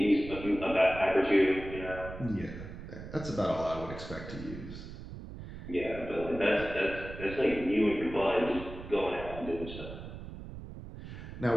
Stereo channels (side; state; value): right; noise; rumble, 11 dB below the sound